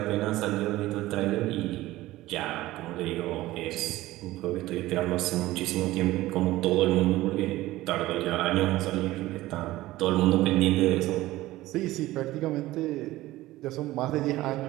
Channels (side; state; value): left; quieter; 17.0 dB